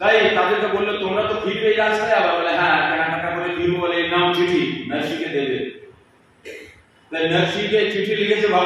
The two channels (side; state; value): both; identical; correlation 1.00